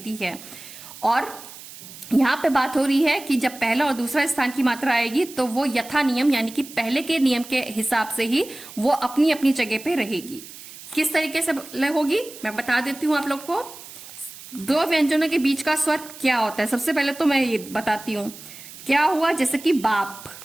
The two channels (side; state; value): right; noise; hiss, 16 dB below the sound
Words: है। और यहाँ पे बात हो रही है कि जब पहला और दूसरा स्थान की मात्रा आएगी तो वो यथा नियम यानी कि पहले के नियम के हिसाब से ही वो अपनी अपनी जगह पे रहेगी। किस तरीके से होगी मैं बता देती हूँ आप लोग को। दो व्यंजनों के बीच का स्वर क्या होता है, सबसे पहले तो मैं ये बताती हूँ क्या हुआ। जैसे कि बाप,